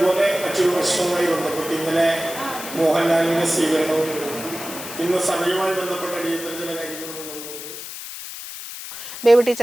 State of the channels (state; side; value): noise; left; hiss, 10 dB below the sound